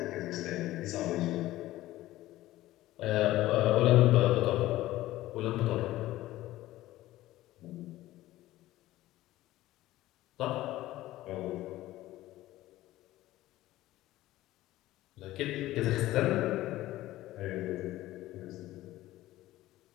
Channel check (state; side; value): quieter; right; 16.0 dB